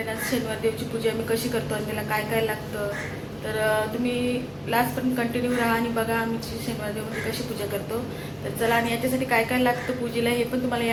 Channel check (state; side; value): identical; both; correlation 1.00